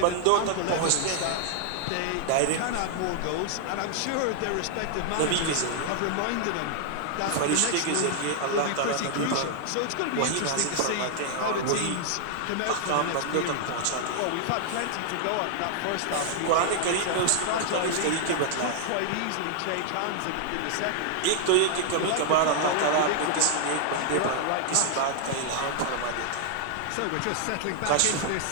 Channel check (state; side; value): different; both; correlation 0.00